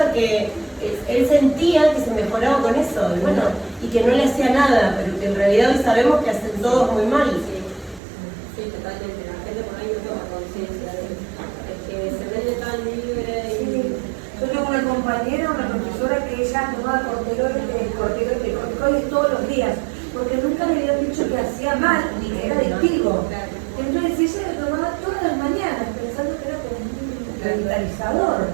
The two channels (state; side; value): drops out; left; at 8.0 s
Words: que él sentía que se mejoraba con eso, y bueno, y que no le hacía nada, pero que en realidad hoy sabemos que hacen todos muy mal. Sí, totalmente. La gente por ahí no toma conciencia de eso. Es que se vende tan libre y... Sí. Yo tengo una compañera, una profesora que ella tomaba corticoides todos los días, porque nunca le habían dicho que hacía mal ni que era adictivo. Entonces ella lo tomaba todas las mañanas, pensando que era como un revitalizador.